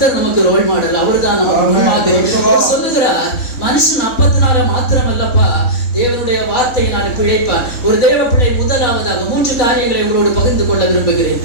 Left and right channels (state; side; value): late; right; 3.6 ms